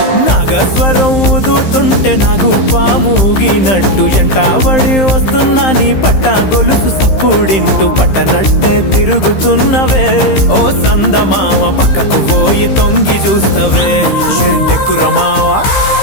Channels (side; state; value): right; late; 15 ms